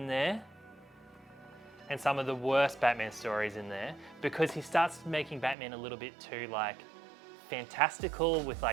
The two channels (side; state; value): left; drops out; at 5.6 s